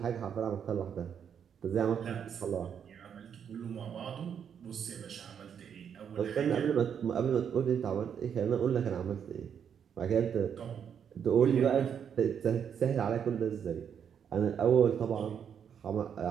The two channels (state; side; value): quieter; left; 7.9 dB